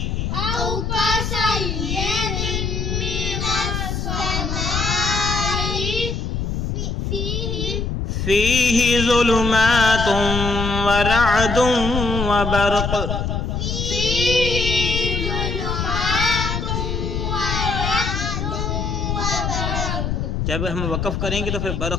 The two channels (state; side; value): noise; left; rumble, 2 dB below the sound